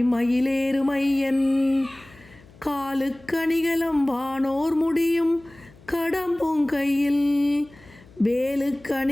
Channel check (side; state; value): left; noise; hum, 25 dB below the sound